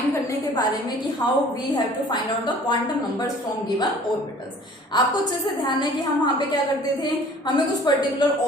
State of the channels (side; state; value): both; normal; correlation 0.50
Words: करने के बारे में कि how we have to find out the quantum numbers from given orbitals. आपको अच्छे से ध्यान है कि हम वहां पे क्या करते थे, हमें कुछ पर्टिकुलर